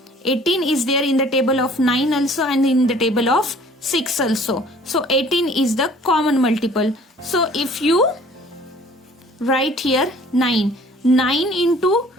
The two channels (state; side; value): normal; both; correlation 0.53